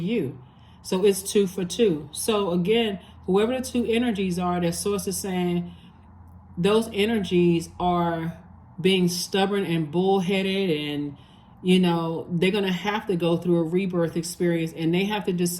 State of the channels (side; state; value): both; identical; correlation 1.00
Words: So it's 2 for 2. So again, whoever the two energies are that Source is saying, those energies are being stubborn and bullheaded, and you know, they're going to have to go through a rebirth experience, and they have to